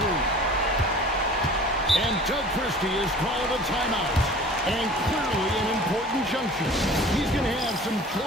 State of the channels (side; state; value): both; normal; correlation 0.44